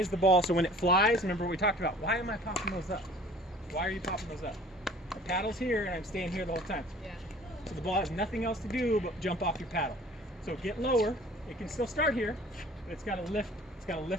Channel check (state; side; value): normal; both; correlation 0.49